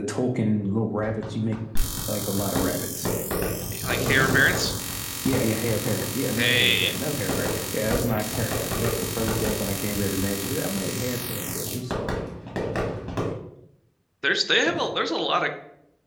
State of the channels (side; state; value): both; identical; correlation 1.00